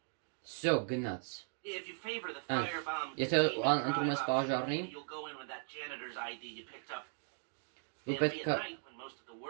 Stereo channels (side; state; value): left; silent; 52 dB below the other